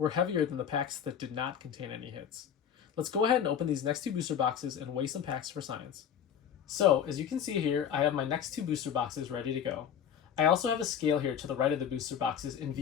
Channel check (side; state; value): right; quieter; 8.4 dB